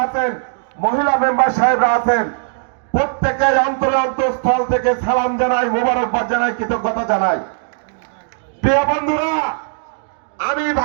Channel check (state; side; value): silent; left; digital silence